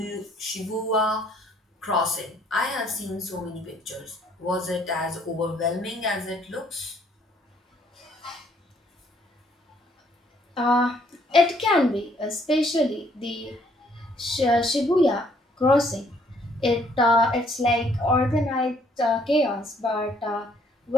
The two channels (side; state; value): both; normal; correlation 0.65